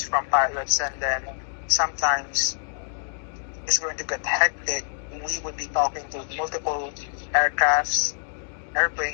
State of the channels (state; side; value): silent; right; digital silence